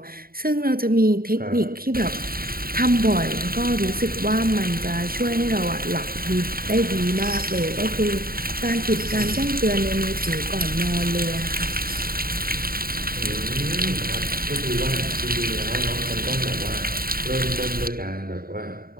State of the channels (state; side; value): late; left; 0.43 ms